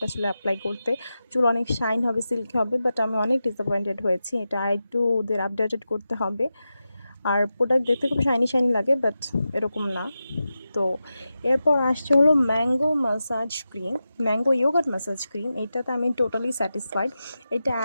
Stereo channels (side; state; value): both; inverted; correlation -0.92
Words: চুলে অ্যাপ্লাই করতে, চুল অনেক শাইন হবে, সিল্কি হবে। বাট আমি অনেক ডিসঅ্যাপয়েন্টেড হয়েছি। এটা একটু ওদের আপডেটেড করতে হবে। আর প্রোডাক্ট দেখতে খুব শাইনি শাইনি লাগে, বাট এরকম না। তো এরপর আসছে হলো mango massage cream, mango yogurt massage cream. এটাতে আমি টোটালি স্যাটিসফাইড। এটা